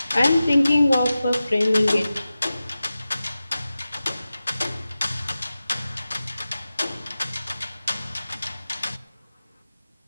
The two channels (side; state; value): both; inverted; correlation -0.94